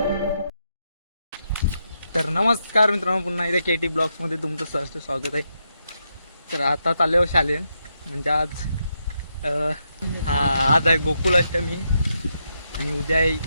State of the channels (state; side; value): inverted; both; correlation -0.82